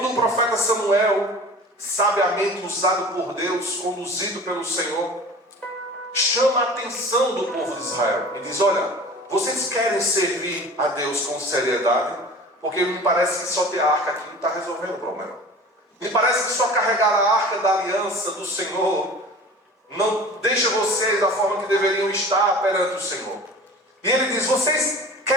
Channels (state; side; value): normal; both; correlation 0.40